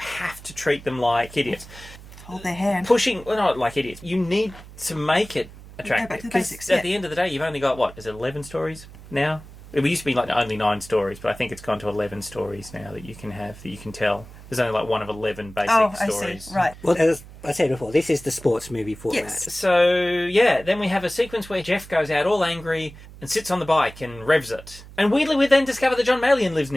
to treat them like idiots. Hold their hand. Not like idiots. You need to make it attractive. Back to the basics, at the end of the day, you've only got, is it 11 stories now? It used to be only 9 stories, but I think it's gone to 11 stories now that you can have, that you can tell. There's only one of 11 basic stories. I see. Right. Well, as I said before, this is the sports movie format. Yes. So, then we have a sequence where Jeff goes out all angry and sits on the bike and revs it. And weirdly, we then discover that John Meillon lives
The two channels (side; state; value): right; noise; hum, 18 dB below the sound